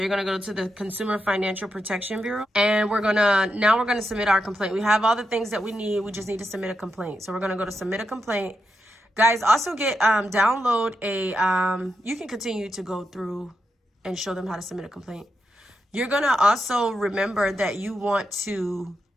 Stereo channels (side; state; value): both; normal; correlation 0.85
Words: you're going to go to the Consumer Financial Protection Bureau. And we're going to submit our complaint. We have all the things that we need. We just need to submit a complaint. So we're going to go to submit a complaint. Guys, also download you can continue to go through and show them how to submit a complaint. You're going to also remember that you want to